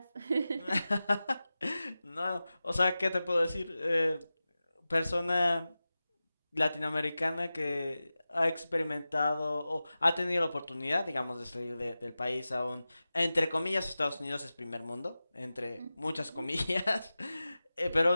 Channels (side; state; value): both; inverted; correlation -0.95